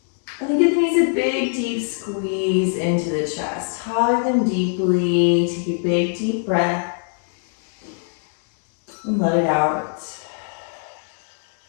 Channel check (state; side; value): silent; right; 62 dB below the other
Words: And then give the knees a big, deep squeeze into the chest. Hug them deeply, take a big, deep breath, and let it out.